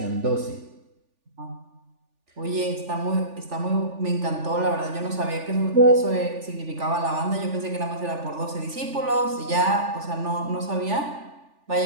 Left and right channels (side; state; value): left; late; 3.4 ms